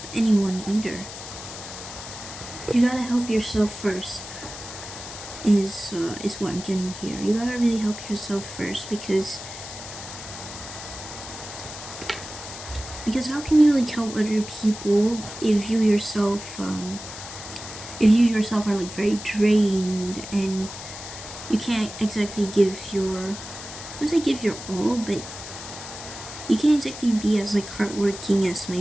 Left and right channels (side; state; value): left; noise; hiss, 11 dB below the sound